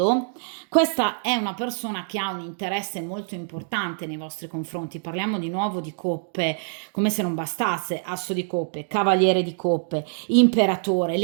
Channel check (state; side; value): silent; left; digital silence